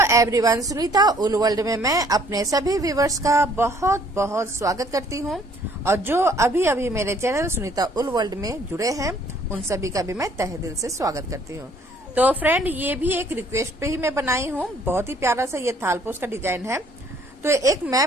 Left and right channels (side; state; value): both; normal; correlation 0.60